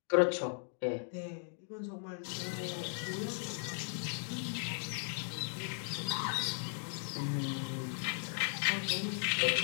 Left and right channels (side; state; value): right; silent; 53 dB below the other